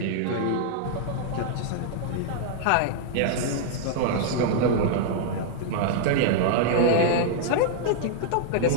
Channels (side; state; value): both; different; correlation -0.01